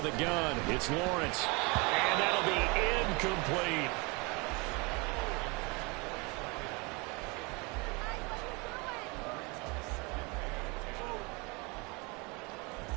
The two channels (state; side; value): quieter; left; 28.5 dB